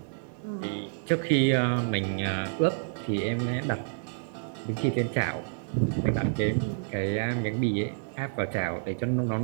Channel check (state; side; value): silent; left; digital silence